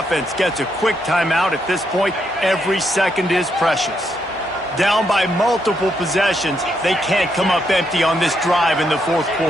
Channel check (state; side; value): normal; both; correlation 0.78